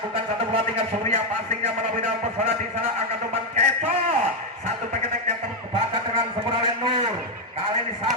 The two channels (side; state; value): both; normal; correlation 0.04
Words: satu bola tinggal Surya, passingnya melalui dalam pesona di sana, angkat umpan Kecot. Satu peketek yang terbaca dengan sempurna oleh Nur. Kali ini